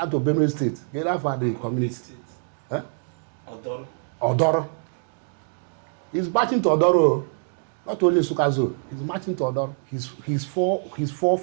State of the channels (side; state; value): left; silent; digital silence